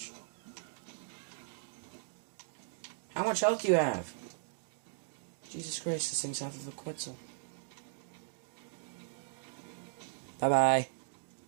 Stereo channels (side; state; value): left; silent; digital silence